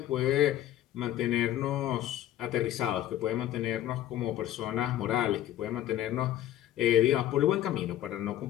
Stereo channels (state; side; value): quieter; right; 12.8 dB